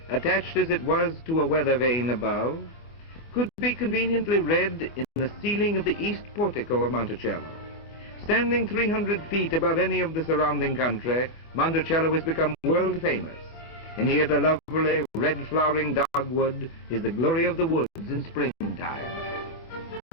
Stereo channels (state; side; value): late; right; 25 ms